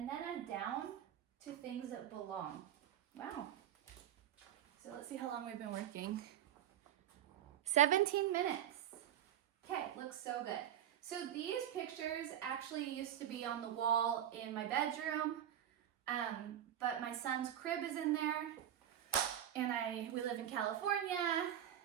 then I'm down to things that belong. Wow. So let's see how long we've been working. 17 minutes. Okay, looks so good. So these pictures actually used to be on the wall in my bedroom, but my son's crib is in there, and we live in California,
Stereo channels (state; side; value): quieter; left; 11.0 dB